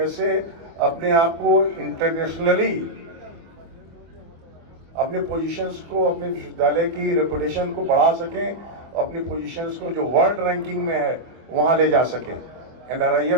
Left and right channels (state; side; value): late; left; 24 ms